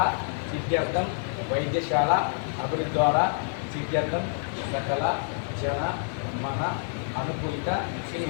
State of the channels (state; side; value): silent; right; digital silence